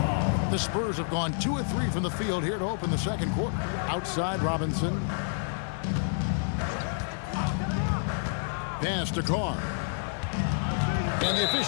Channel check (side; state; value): right; silent; 59 dB below the other